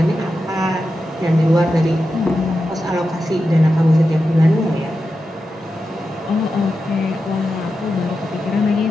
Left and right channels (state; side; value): normal; both; correlation 0.90